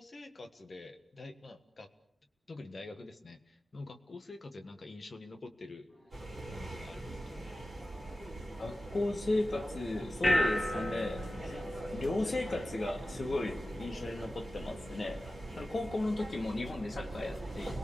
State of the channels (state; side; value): normal; both; correlation 0.94